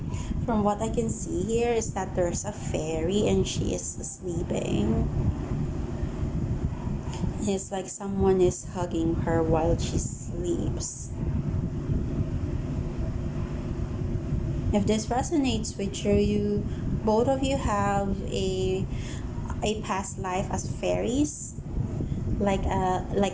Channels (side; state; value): both; identical; correlation 1.00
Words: From what I can see here is that there's a fairy and she is sleeping. It's like someone is hugging her while she sleeps. If this resonates with you, both of you have a past life as fairies, like